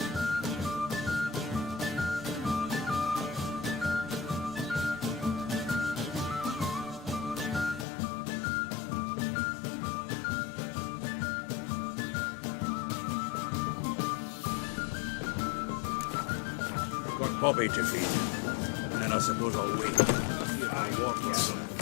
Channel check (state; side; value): drops out; right; at 7.9 s